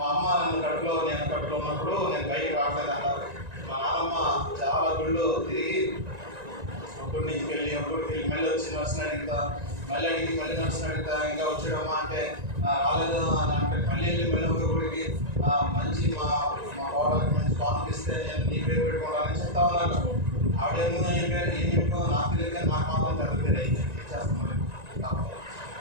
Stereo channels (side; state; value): left; late; 1.9 ms